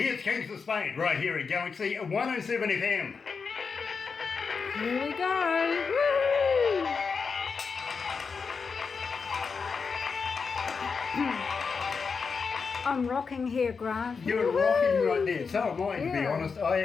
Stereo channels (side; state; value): right; quieter; 5.3 dB